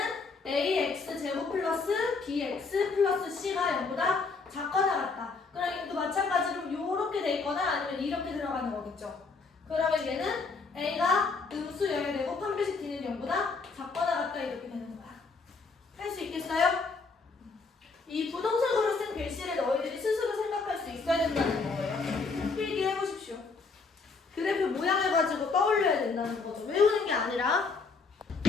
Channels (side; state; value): right; quieter; 4.4 dB